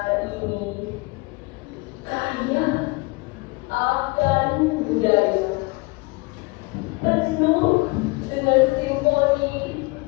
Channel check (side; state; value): right; quieter; 25.9 dB